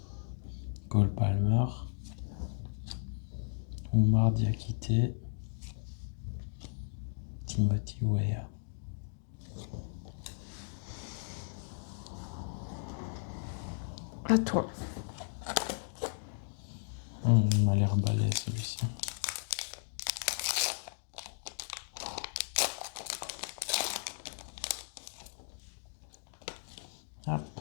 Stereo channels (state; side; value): silent; right; digital silence